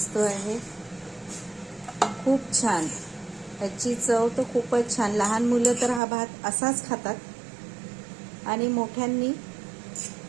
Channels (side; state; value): left; drops out; at 6.0 s